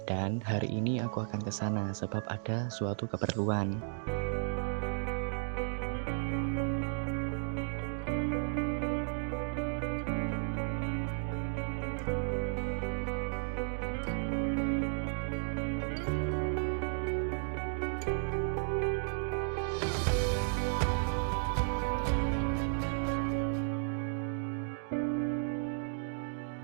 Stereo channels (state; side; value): silent; left; digital silence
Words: Dan hari ini aku akan ke sana sebab ada suatu keperluan.